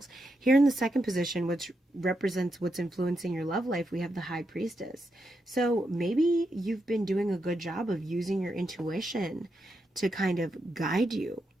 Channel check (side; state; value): both; normal; correlation 0.84